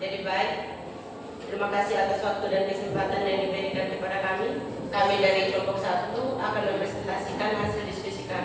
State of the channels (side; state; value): both; identical; correlation 1.00